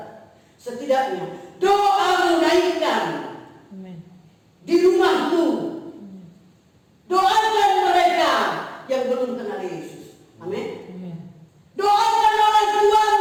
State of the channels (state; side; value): identical; both; correlation 1.00